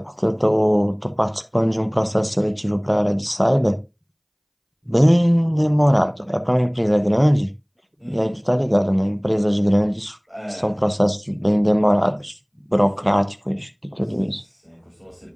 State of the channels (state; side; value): identical; both; correlation 1.00